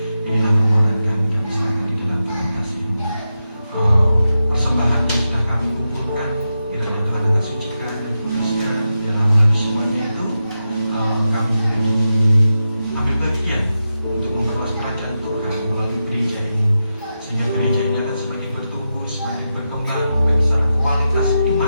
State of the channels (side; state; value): both; inverted; correlation -0.89